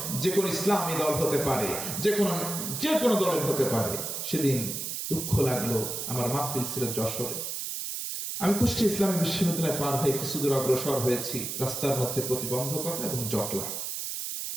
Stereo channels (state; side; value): noise; right; hiss, 4 dB below the sound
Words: যে কোনো ইসলামী দল হতে পারে, যে কোনো দলের হতে পারে। সেদিন দুঃখ লাগলো, আমার মাহফিল ছিল যশোরে, আমি কুষ্টিয়া ইসলামী বিশ্ববিদ্যালয় পার হয়ে কিছু দূর অগ্রসর হয়েছি। রাস্তার মধ্যে প্রতিবন্ধকতা এবং জটলা,